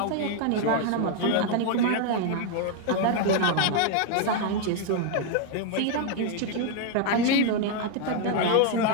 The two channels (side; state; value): both; different; correlation 0.01